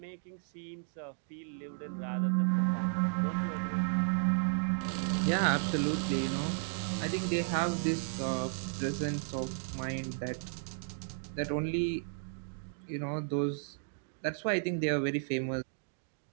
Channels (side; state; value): left; silent; digital silence